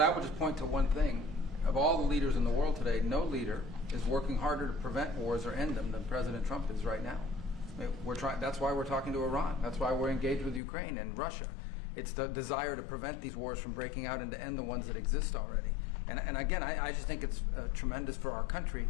would just point to one thing. Of all the leaders in the world today, no leader is working harder to prevent wars or end them than President Trump is right now. We're trying. That's why we're talking to Iran. That's why we're engaged with Ukraine and Russia. It's the desire to prevent these wars from breaking out and to end the ones that exist already. And again, I just think it's tremendous for our country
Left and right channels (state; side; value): drops out; right; at 10.6 s